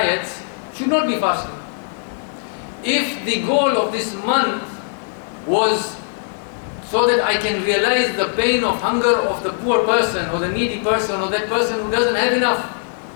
should not be fasting. If the goal of this month was so that I can realize the pain of hunger of the poor person or the needy person or that person who doesn't have enough,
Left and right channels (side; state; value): right; silent; 66 dB below the other